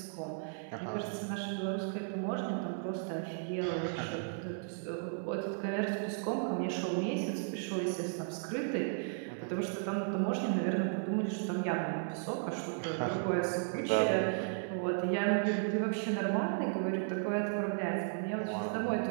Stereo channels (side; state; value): left; silent; 55 dB below the other